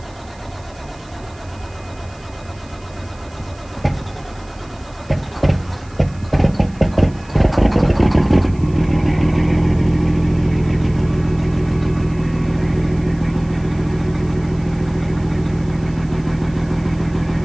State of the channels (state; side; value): noise; right; hiss, 27 dB below the sound